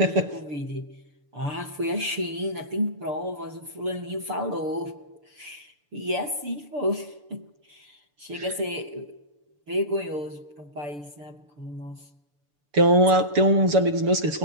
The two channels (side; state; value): left; late; 6.9 ms